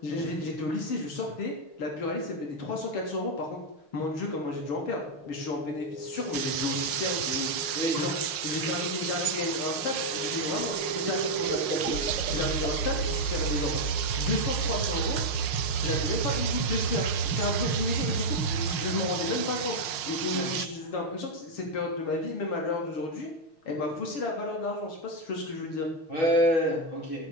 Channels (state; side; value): late; right; 6.5 ms